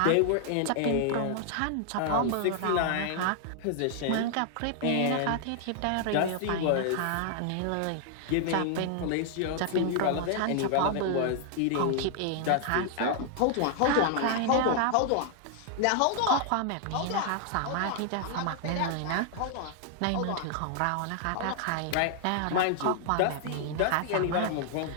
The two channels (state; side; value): different; both; correlation 0.00